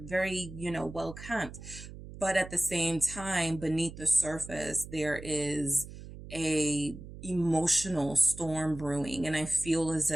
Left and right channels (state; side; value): noise; right; hum, 14 dB below the sound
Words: well kept. But at the same time, beneath the surface, there is a emotional storm brewing. And I feel as